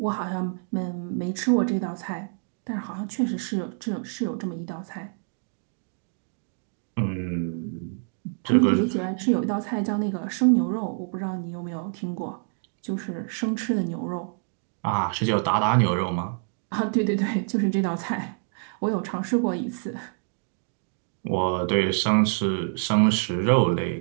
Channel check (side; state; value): left; silent; 60 dB below the other